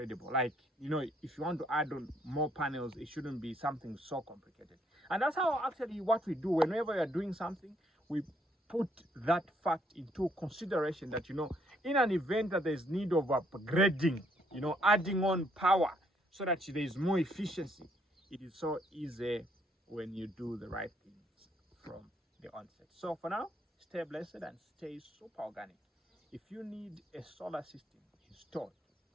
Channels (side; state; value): both; normal; correlation 0.69